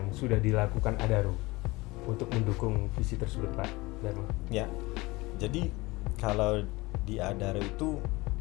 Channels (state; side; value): quieter; right; 22.2 dB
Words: sudah dilakukan Adaro untuk mendukung visi tersebut Pak Dharma? Ya, jadi kalau di Adaro itu